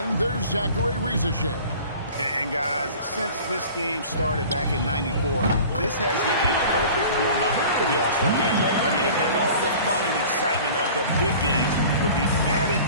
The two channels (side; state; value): both; inverted; correlation -0.43